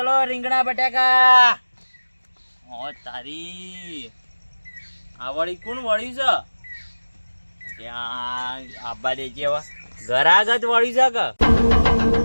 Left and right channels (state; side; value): inverted; both; correlation -1.00